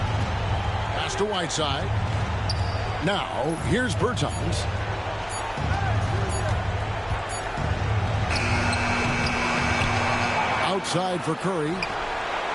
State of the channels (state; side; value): identical; both; correlation 1.00